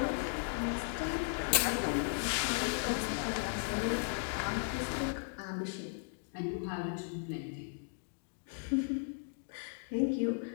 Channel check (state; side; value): silent; right; digital silence